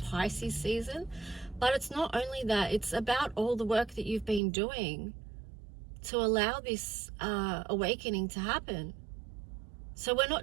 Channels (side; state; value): left; drops out; at 4.4 s